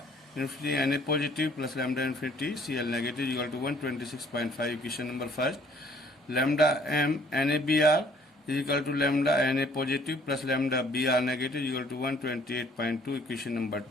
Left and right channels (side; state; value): both; normal; correlation 0.59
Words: infinity Na positive plus lambda infinity Cl negative is equal to 126.5. Equation number first. Lambda m NaBr is equal to lambda Na positive plus lambda Br negative is equal to 128.2. Equation number